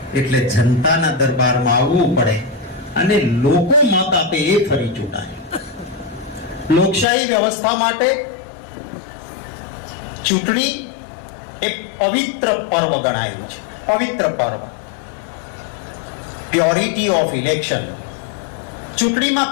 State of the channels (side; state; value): right; drops out; at 7.1 s